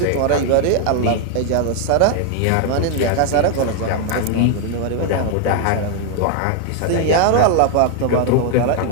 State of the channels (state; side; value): different; both; correlation 0.00